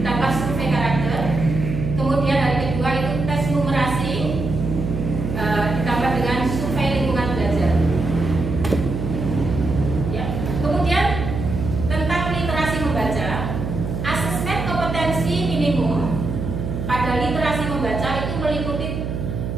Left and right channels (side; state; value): right; noise; hum, 4 dB below the sound